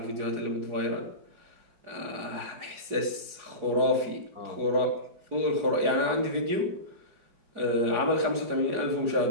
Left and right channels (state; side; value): late; left; 4.8 ms